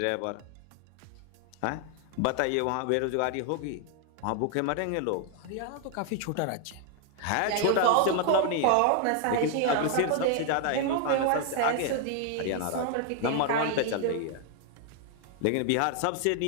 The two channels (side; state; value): both; different; correlation 0.00